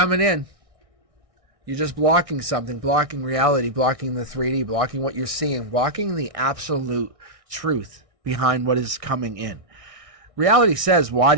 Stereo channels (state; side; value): late; left; 1.6 ms